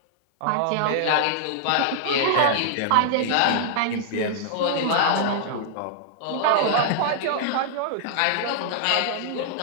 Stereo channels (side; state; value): both; different; correlation -0.01